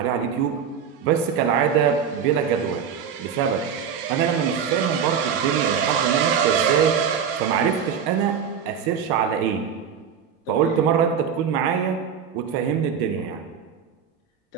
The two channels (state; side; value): quieter; left; 7.5 dB